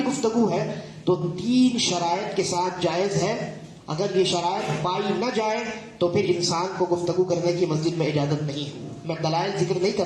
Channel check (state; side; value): identical; both; correlation 1.00